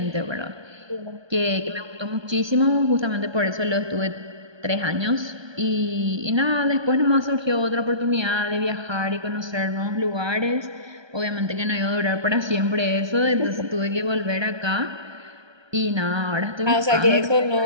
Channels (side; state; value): left; late; 1.2 ms